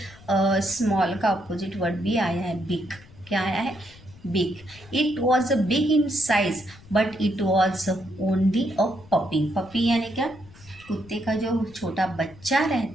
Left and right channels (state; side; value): noise; left; rumble, 22 dB below the sound